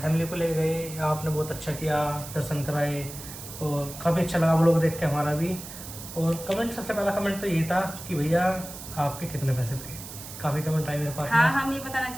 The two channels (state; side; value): noise; right; hiss, 12 dB below the sound